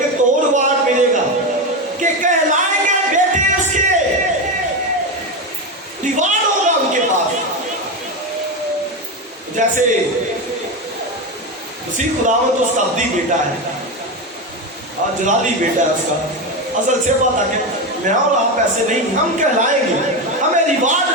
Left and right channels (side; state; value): both; normal; correlation 0.15